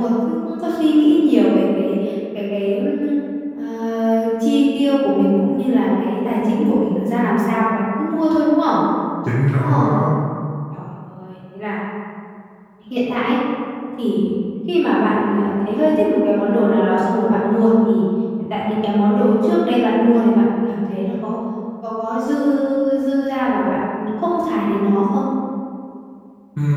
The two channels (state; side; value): identical; both; correlation 1.00